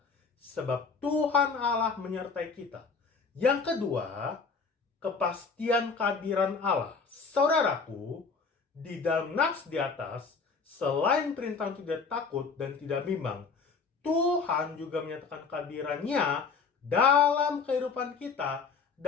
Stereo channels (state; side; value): quieter; right; 5.0 dB